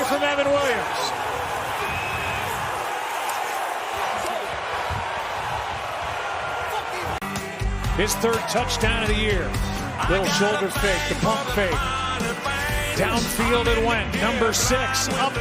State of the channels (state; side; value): identical; both; correlation 1.00